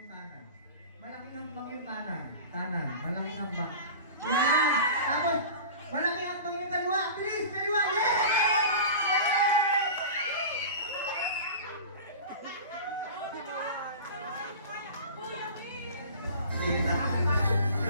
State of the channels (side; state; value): both; inverted; correlation -0.36